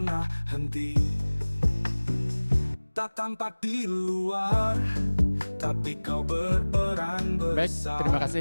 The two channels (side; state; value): both; inverted; correlation -1.00